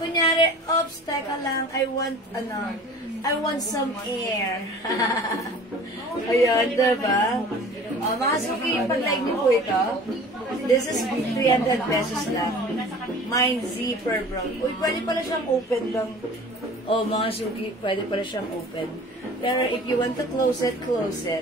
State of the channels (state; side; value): normal; both; correlation 0.44